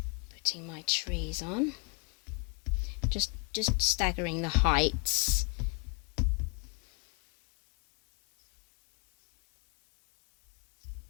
putting my trees on, just staggering the heights.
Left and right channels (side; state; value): right; quieter; 31.4 dB